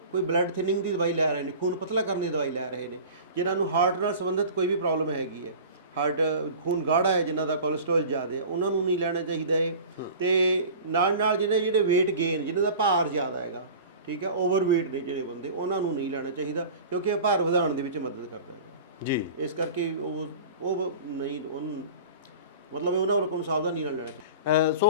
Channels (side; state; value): both; inverted; correlation -0.38